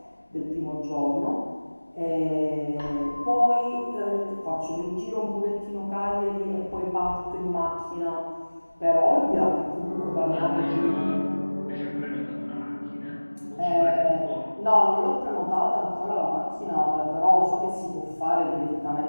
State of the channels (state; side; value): inverted; both; correlation -1.00